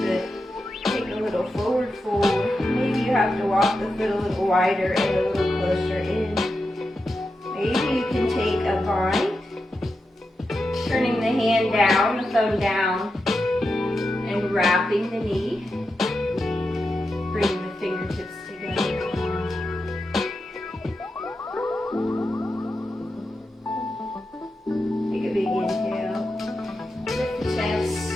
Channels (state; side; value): normal; both; correlation 0.89